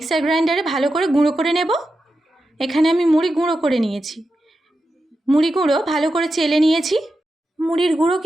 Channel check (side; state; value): both; normal; correlation 0.90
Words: গ্রাইন্ডারে ভালো করে গুঁড়ো করে নেব। এখানে আমি মুড়ি গুঁড়ো করে নিয়েছি। মুড়ি গুঁড়ো ভালো করে চেলে নিয়েছি। মুড়ির গুঁড়ো